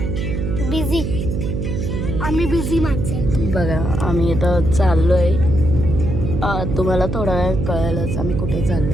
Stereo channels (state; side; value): noise; right; hum, 2 dB below the sound